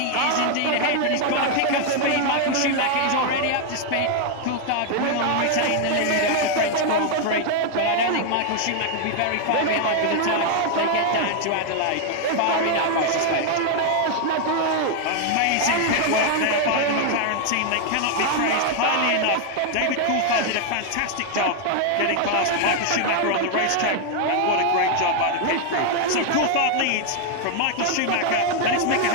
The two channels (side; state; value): both; different; correlation 0.00